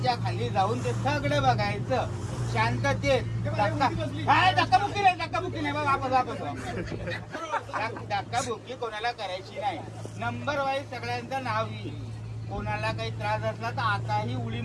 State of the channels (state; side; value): identical; both; correlation 1.00